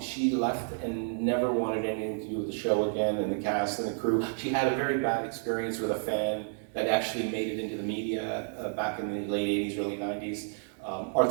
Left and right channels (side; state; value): left; silent; digital silence